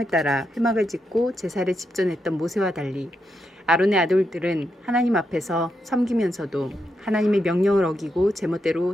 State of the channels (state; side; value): normal; both; correlation 0.83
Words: 따라 회막을 짓고 제사를 집전했던 모세와 달리 아론의 아들들은 하나님 앞에서 섬기면서도 하나님의 명령을 어기고